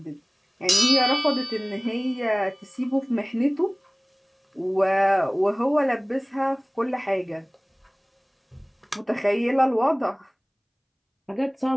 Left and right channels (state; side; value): identical; both; correlation 1.00